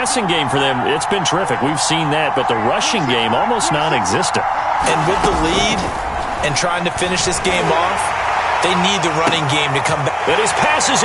game for them, it's been terrific. We've seen that. But the rushing game, almost non-existent. And with the lead and trying to finish this game off, they need the running game to come back. And his pass is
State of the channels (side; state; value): both; identical; correlation 1.00